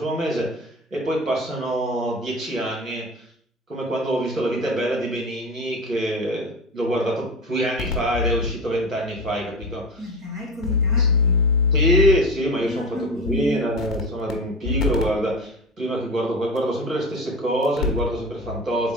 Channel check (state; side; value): normal; both; correlation 0.30